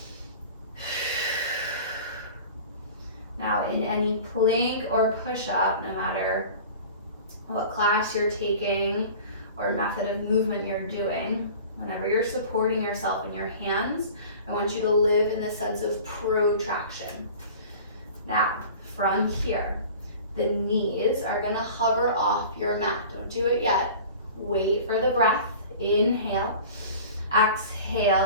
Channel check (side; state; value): both; inverted; correlation -0.41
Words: Now in any plank or push-up, no matter what class you're taking or method of movement you're doing, whenever you're supporting yourself in your hands, I want you to live in the sense of protraction. Now, from here, the knees are gonna hover off your mat. Don't do it yet. Wait for the breath. Inhale.